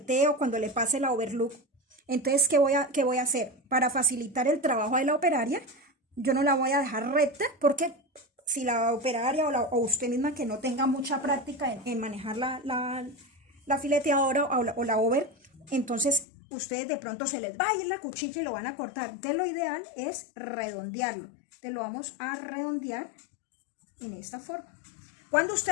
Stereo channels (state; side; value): drops out; right; at 16.2 s